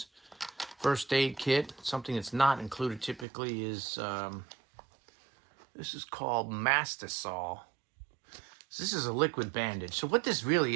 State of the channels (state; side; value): drops out; left; at 3.2 s